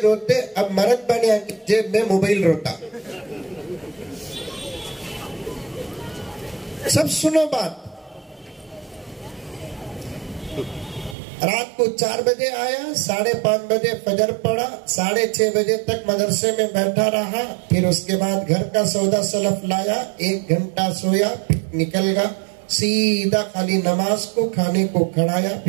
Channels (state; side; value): drops out; left; at 11.2 s